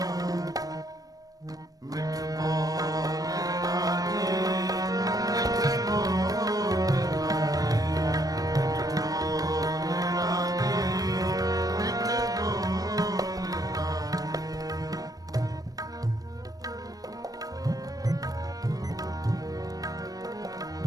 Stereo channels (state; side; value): late; left; 0.18 ms